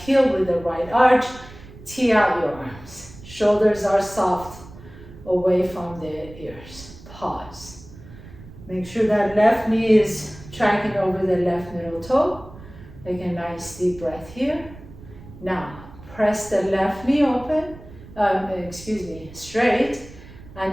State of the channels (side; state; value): right; noise; rumble, 18 dB below the sound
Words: heel with the right arch. Tee out your arms. Shoulders are soft away from the ears. Pause. Make sure that left knee is tracking over the left middle toe. Take a nice deep breath here. Now, press the left knee open, straight, and